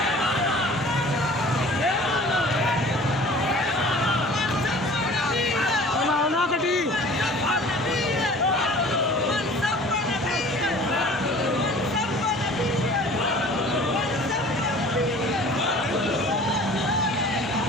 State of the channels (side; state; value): both; normal; correlation 0.46